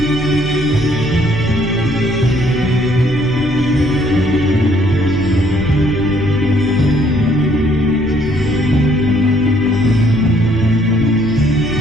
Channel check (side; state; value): both; normal; correlation 0.64